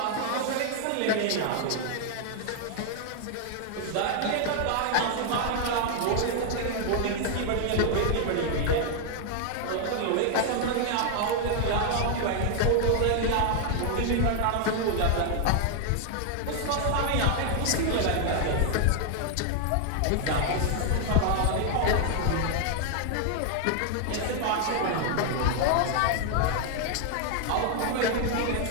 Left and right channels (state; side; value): different; both; correlation 0.00